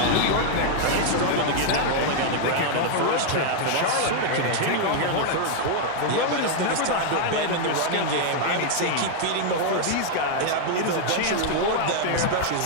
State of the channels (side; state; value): both; different; correlation 0.00